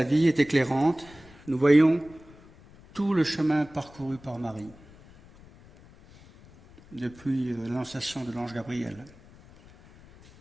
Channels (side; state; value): left; noise; rumble, 23 dB below the sound